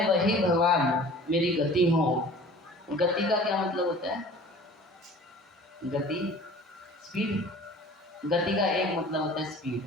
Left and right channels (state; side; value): normal; both; correlation 0.45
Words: वही भगवान मेरी गति हो। गति का क्या मतलब होता है? गति स्पीड। गति का एक मतलब होता है स्पीड,